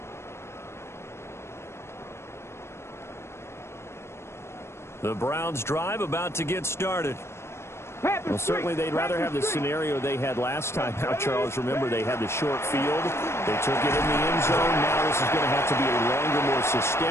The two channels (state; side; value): late; right; 0.13 ms